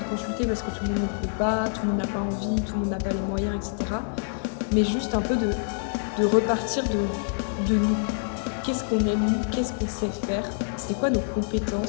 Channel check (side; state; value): right; silent; digital silence